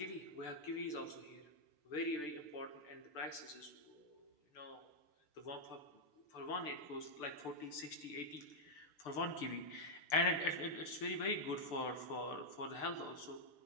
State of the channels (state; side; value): late; right; 6.8 ms